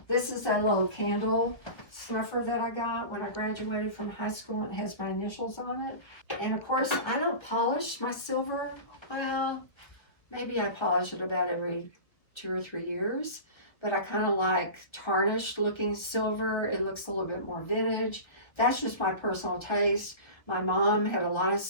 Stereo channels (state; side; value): late; right; 1.1 ms